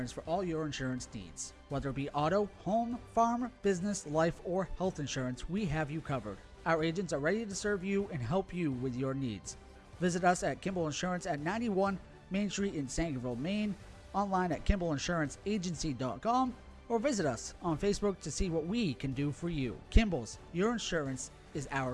for all your insurance needs. Whether it be auto, home, farm, business, life, or health insurance, we have you covered. Our agents are ready to serve you and help you with your needs. Visit us at Kimball Insurance at 91 Main Street in Sangerville, Maine, online at KimballInsuranceAgency.com, or visit us on Facebook to see what we can do for you. Kimball's, your insurance is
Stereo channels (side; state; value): both; identical; correlation 1.00